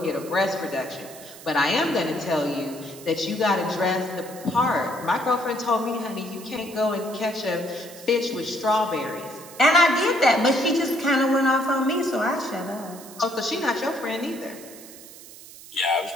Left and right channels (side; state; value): right; noise; hiss, 17 dB below the sound